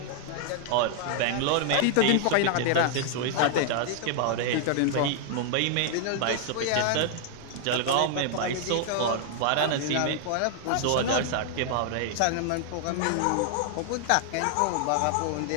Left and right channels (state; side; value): different; both; correlation 0.00